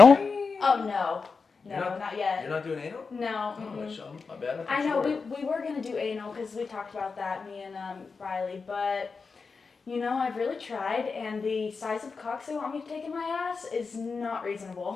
Oh no. You're No, not- not yet. You're not doing anal? No. Oh, mm-mm. my bad. I know, Sure. we were going to do anal because we talked about that, me and Riley, but you know, I've really tried, and the size of cocks they want me to take in my ass is not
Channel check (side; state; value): right; quieter; 4.8 dB